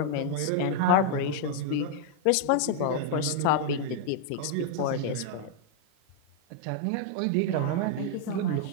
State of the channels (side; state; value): both; different; correlation 0.00